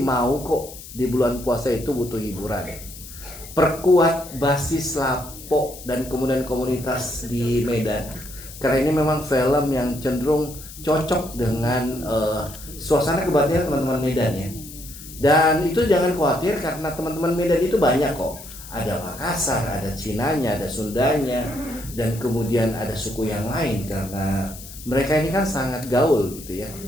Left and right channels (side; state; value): left; noise; hiss, 15 dB below the sound